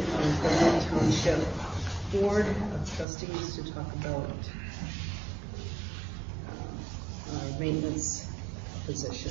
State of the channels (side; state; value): left; drops out; at 3.1 s